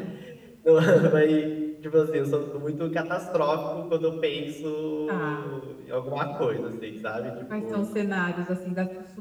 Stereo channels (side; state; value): both; identical; correlation 1.00